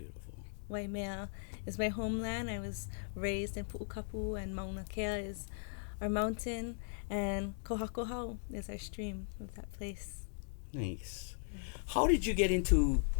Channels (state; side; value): silent; right; digital silence